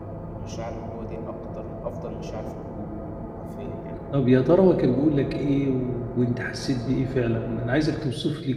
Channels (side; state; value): both; identical; correlation 1.00